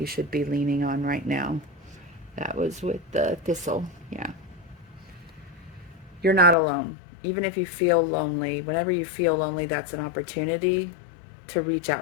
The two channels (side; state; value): right; drops out; at 6.6 s